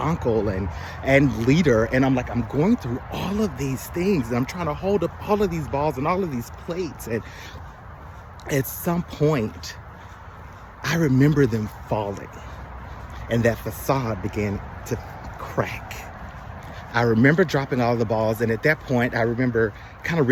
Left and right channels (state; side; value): identical; both; correlation 1.00